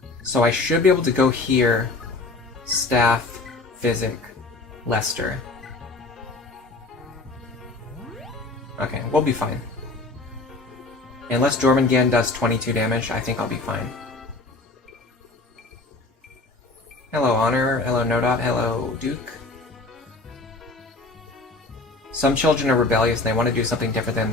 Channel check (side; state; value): right; quieter; 3.2 dB